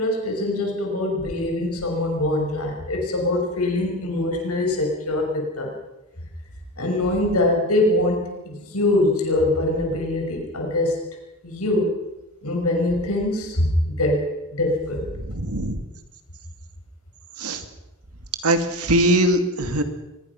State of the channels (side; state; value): both; normal; correlation 0.28